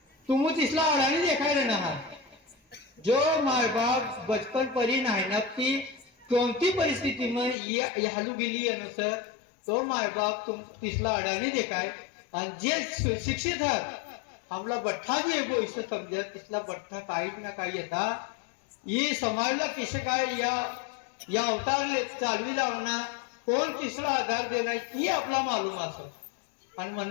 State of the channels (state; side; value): drops out; right; at 7.6 s